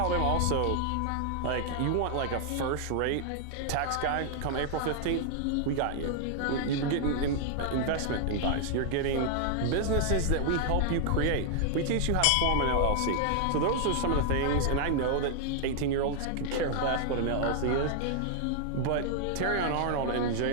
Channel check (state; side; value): different; both; correlation 0.00